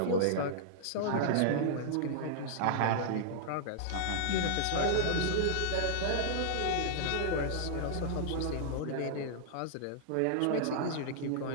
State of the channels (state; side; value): different; both; correlation -0.01